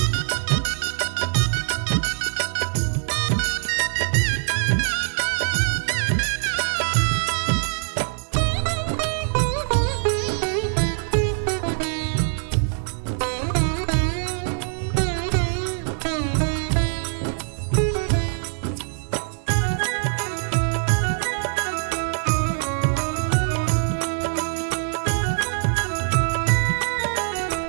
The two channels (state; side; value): silent; left; digital silence